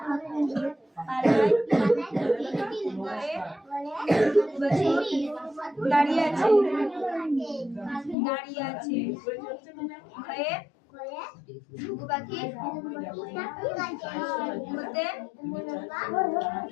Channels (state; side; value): drops out; right; at 8.2 s